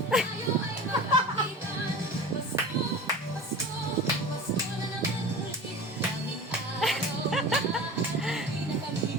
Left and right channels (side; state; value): both; normal; correlation 0.34